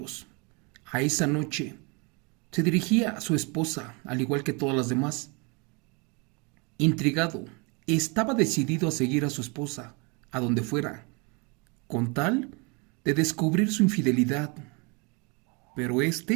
a esa noche, se dirigía a su esposa, al igual que todas las demás? Intrigado, estaba decidido a seguir a su esposa, a donde fuera, con tal de descubrir su infidelidad. Pero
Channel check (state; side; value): quieter; left; 31.1 dB